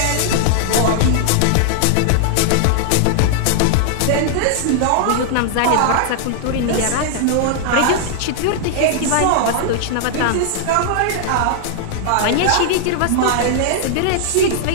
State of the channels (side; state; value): both; different; correlation -0.01